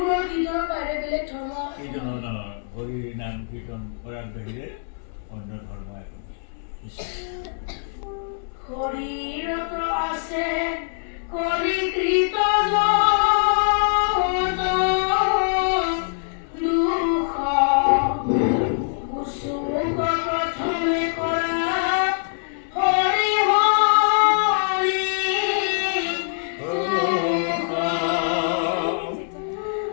কীৰ্তনৰ বাহিৰে বেলেগ ধৰ্ম হৰি নাম কীৰ্তন কৰাৰ বাহিৰে অন্য ধৰ্ম একো হৰিৰত আছে কলিকৃত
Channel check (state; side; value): silent; right; digital silence